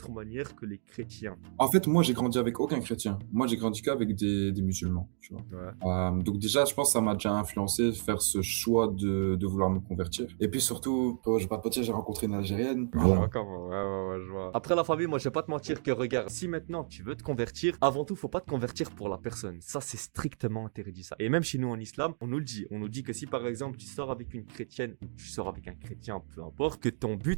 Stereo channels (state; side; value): silent; left; digital silence